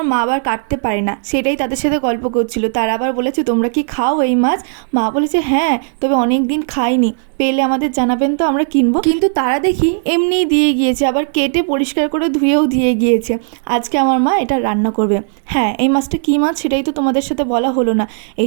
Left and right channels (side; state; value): left; silent; digital silence